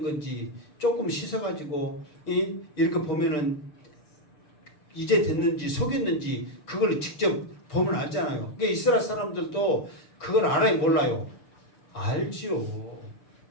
건지 조금 씻어가지고 이렇게 보면은 이제 됐는지 속였는지 그걸 직접 보면 알잖아요. 그러니까 이스라엘 사람들도 그걸 알아요 몰라요? 알지요.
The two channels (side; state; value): right; late; 6.7 ms